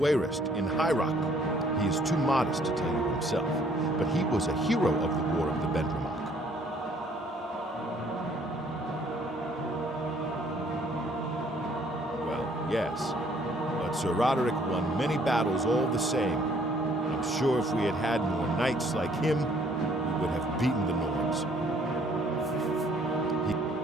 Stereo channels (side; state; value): both; normal; correlation 0.62